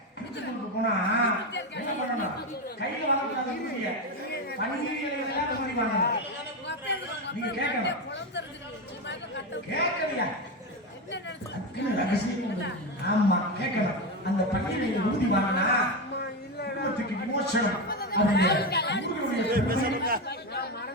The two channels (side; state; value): both; normal; correlation 0.14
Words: திருச்செந்தூருக்கு போனா என்ன பண்ணணும்? கையில வாங்கக்கூடாது, பண்டிகைகள் வாங்கணும். நீங்க கேட்கலையா? ஆமா கேட்கணும். அந்த பண்டிகையை உறுதி வாங்கினா விமோசனம்